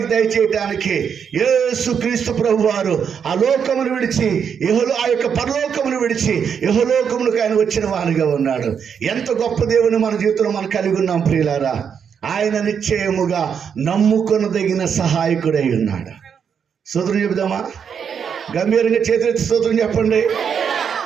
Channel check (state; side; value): quieter; left; 7.3 dB